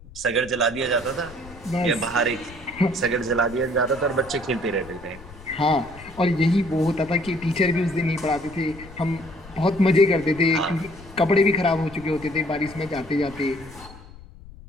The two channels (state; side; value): noise; left; rumble, 19 dB below the sound